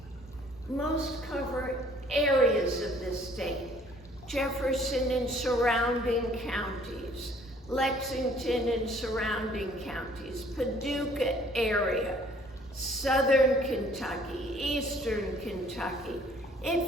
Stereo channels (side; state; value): both; normal; correlation 0.58